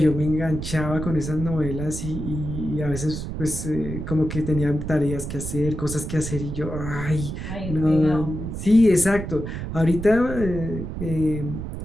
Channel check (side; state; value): right; noise; rumble, 6 dB below the sound